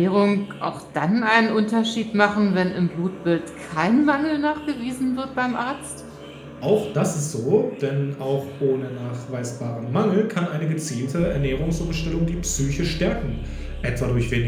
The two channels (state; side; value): identical; both; correlation 1.00